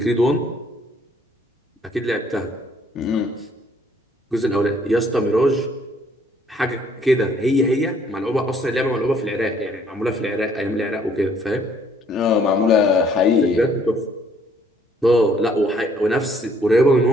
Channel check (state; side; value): normal; both; correlation 0.63